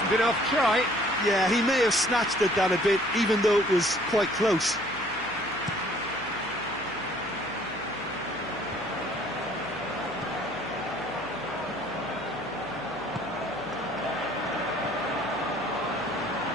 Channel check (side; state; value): left; noise; hum, 23 dB below the sound